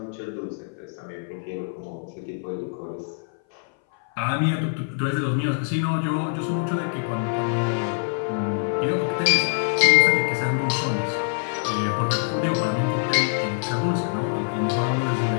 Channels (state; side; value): silent; right; 59 dB below the other